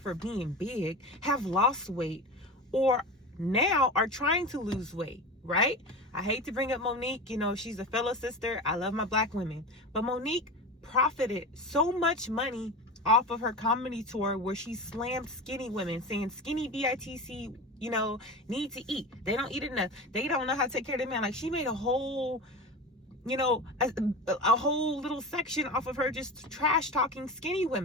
being big have lost weight or now are trying to lose weight, right? I hate to bring up Monique, you know, she's a fellow sister. I love my black women. But Monique profited so much money off of her comedy tour where she slammed skinny women, saying skinny BITC, you know, need to eat. They don't eat enough. They don't know how to take care of their man. Like, she made a whole, you know, a whole little section off of her just trash talking skinny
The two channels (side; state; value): both; normal; correlation 0.27